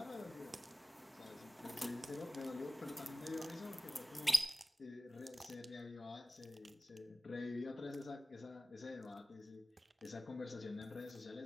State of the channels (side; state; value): both; normal; correlation 0.97